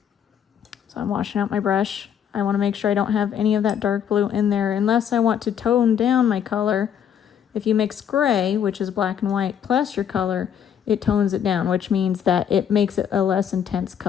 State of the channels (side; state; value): right; quieter; 8.7 dB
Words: So I'm washing out my brush. I want to make sure I don't have any of that dark blue in there unless I want to tone down my color. If you mix gray, which is black and white, plus your color, it tones it down, which means that it makes it a less intense